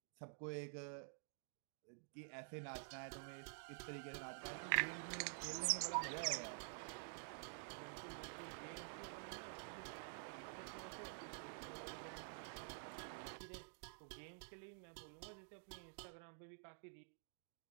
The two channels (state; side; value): silent; left; digital silence